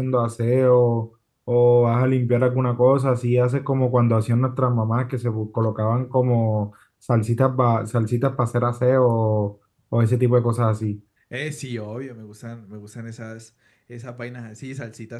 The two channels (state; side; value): identical; both; correlation 1.00